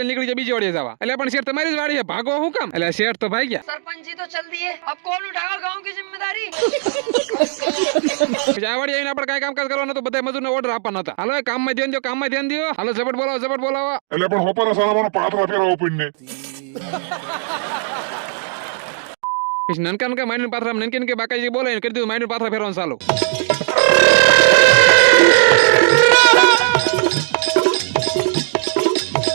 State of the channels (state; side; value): silent; left; digital silence